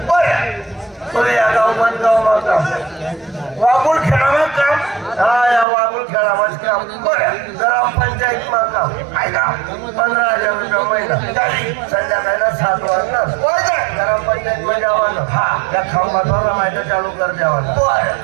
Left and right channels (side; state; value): left; drops out; at 5.7 s